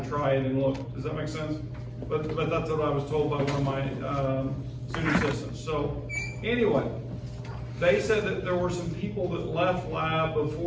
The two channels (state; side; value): identical; both; correlation 1.00